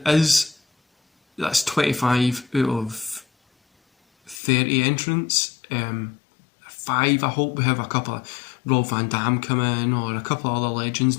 25 out of 30 entrants. 5, I hope we have a couple of Rob Van Dam come in, or a couple of other legends.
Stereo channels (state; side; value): drops out; right; at 4.4 s